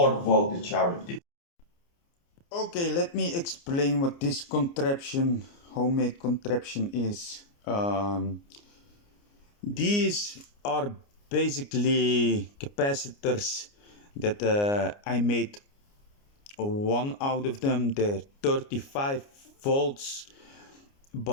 voltage out of this. Okay, let me explain what this contraption, homemade contraption is. These are basically capacitors that I made one out of them. They're 35 volts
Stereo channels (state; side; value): late; right; 29 ms